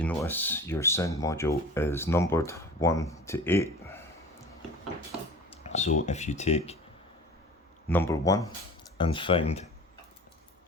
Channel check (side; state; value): both; normal; correlation 0.40